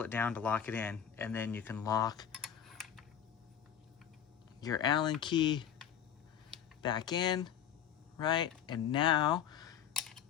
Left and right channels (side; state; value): right; quieter; 9.0 dB